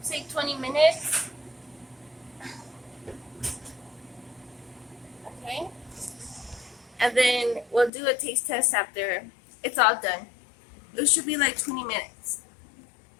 say 20 minutes. Okay. And then we'll do a taste test after it's all done. It should be like 20 minutes.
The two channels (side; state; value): right; drops out; at 7.9 s